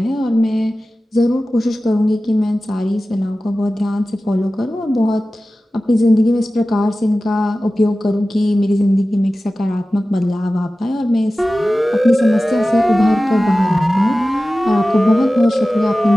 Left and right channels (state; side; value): normal; both; correlation 0.95